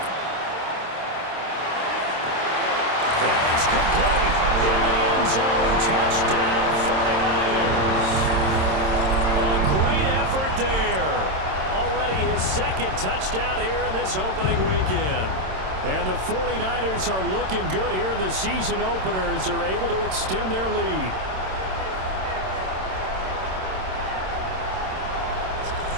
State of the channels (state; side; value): late; left; 27 ms